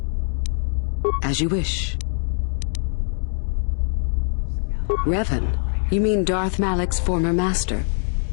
As you wish. Revan, you mean Darth Malak's former master?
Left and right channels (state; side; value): silent; right; digital silence